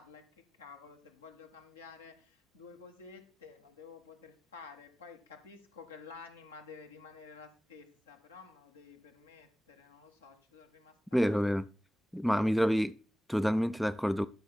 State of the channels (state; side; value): normal; both; correlation 0.97